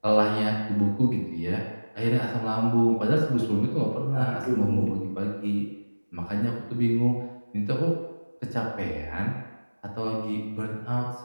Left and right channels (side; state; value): both; inverted; correlation -1.00